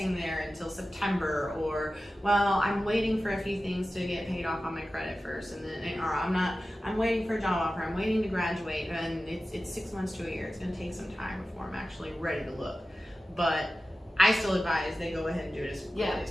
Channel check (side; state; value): both; normal; correlation 0.95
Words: there until September, or, well, I'm waiting for a few things to get paid off on my credit first, and then, or I'm waiting for a job offer, I'm waiting to graduate, and it's 6 months to a year. It's gonna take some time before I'm actually ready to look. But I still advise they go ahead and do it as quickly as